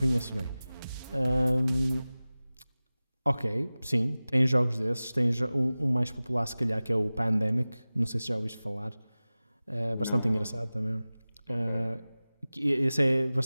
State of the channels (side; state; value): both; inverted; correlation -0.98